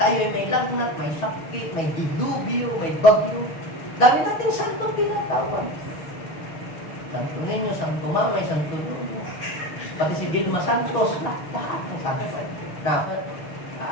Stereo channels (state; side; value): late; right; 6.5 ms